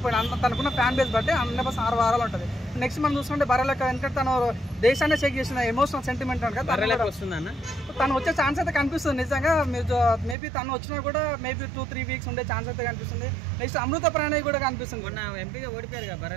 తనకున్న ఫ్యాన్ బేస్ బట్టి 100% 6 వారాలు ఉంటుంది. నెక్స్ట్ మనం చూసుకుంటే బర్రెలెక్క, ఎందుకంటే తను దేశాన్ని చెక్ చేసిన ఎమోషనల్ సెంటిమెంట్ అంటే తను వచ్చే ఛాన్స్ అయితే కనిపిస్తుంది. నిజంగా మీరు మేబీ తను వచ్చినా కూడా మేబీ 2-3 వీక్స్ ఉండే ఛాన్స్ అయితే కనిపిస్తుంది. నెక్స్ట్ అమృత ప్రాణయ్ కూడా కనిపిస్తుంది. మొన్న ఎంపీగా ఓడిపోయారు కదా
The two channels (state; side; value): drops out; left; at 10.4 s